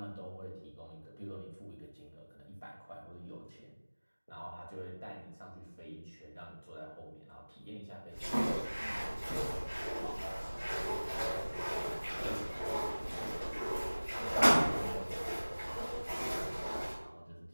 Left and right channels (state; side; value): inverted; both; correlation -1.00